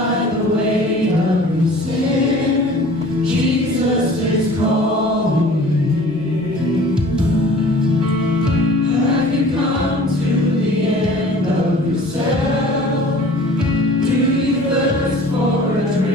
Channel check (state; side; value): normal; both; correlation 0.46